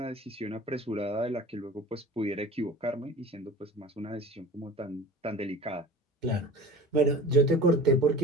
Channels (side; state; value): both; normal; correlation 0.41